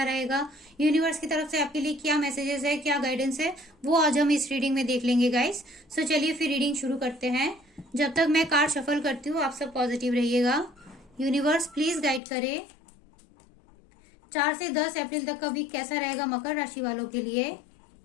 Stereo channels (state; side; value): drops out; right; at 12.2 s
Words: रहेगा, यूनिवर्स की तरफ से आपके लिए क्या मैसेजेस है, क्या गाइडेंस है, वो आज हम इस रीडिंग में देख लेंगे गाइस। सो चलिए फिर रीडिंग शुरू करते हैं। जब तक मैं कार्ड शफल करती हूँ, आप सब पॉजिटिव रहिएगा। यूनिवर्स प्लीज गाइड करे 4 से 10 अप्रैल तक का वीक कैसा रहेगा मकर राशि वालों के लिए।